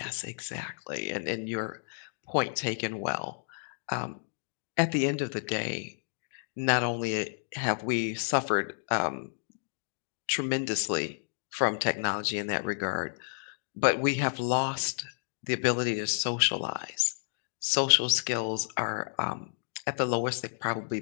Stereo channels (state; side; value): silent; right; digital silence